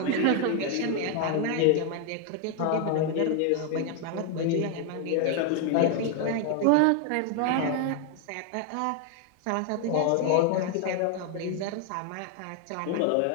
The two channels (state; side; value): different; both; correlation 0.00